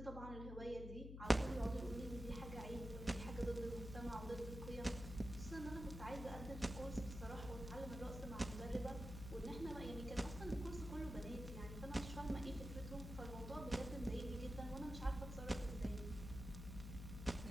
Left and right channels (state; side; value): noise; left; hum, 7 dB below the sound